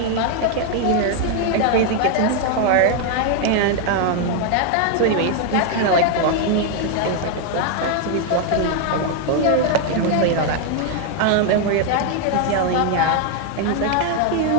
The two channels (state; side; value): different; both; correlation 0.00